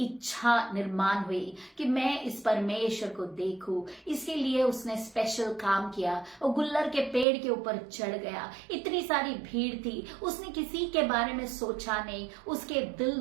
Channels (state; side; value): drops out; left; at 7.2 s